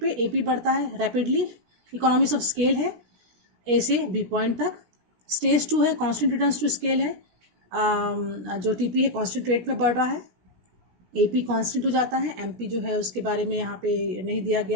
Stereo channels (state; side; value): late; left; 17 ms